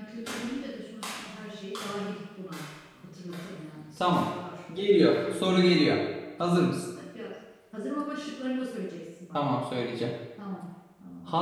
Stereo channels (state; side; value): identical; both; correlation 1.00